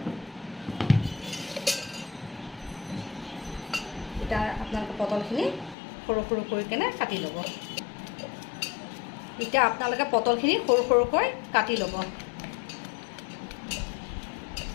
এতিয়া আপোনালোকে পটলখিনি সৰু সৰু কৰি কেনে কাটি ল'ব। এতিয়া আপোনালোকে পটলখিনি সৰু সৰুকৈ কাটি ল'ব।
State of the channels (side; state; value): right; drops out; at 5.8 s